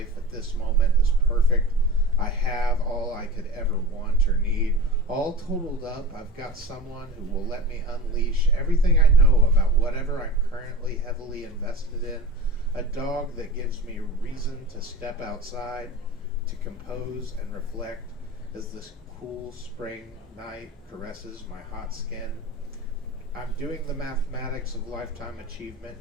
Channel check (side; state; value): both; normal; correlation 0.32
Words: at this moment is perfect. I have all I could ever want or need. All totaled up, I've got someone who will let me unleash everything I know about whatever I'm currently heavily invested in. A dog that gives me reason to step outside, to compose and reflect as this cool spring night caresses my hot skin. I'm doing the mathematics of lifetime achievement